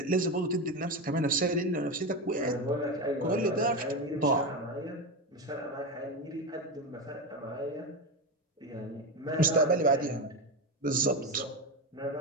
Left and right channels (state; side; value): normal; both; correlation 0.17